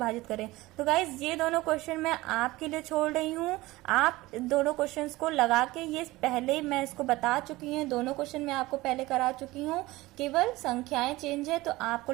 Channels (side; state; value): left; quieter; 19.4 dB